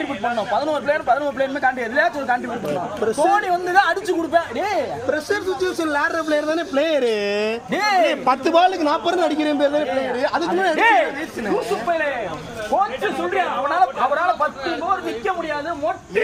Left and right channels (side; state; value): both; identical; correlation 1.00